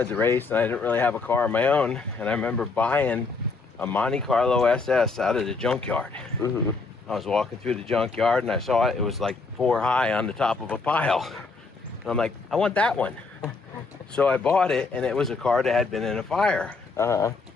to race, and I didn't really have a car of my own, and I remember buying a Monte Carlo SS out of the junkyard. I was walking through the junkyard and I saw it was like 4 high on the top of a pile. And I'm like, I want that one. So I bought it, and it was a car that had been in a fire.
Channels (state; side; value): quieter; right; 4.2 dB